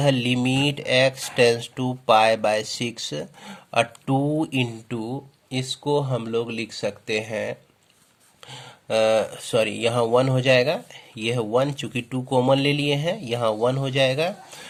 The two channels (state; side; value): identical; both; correlation 1.00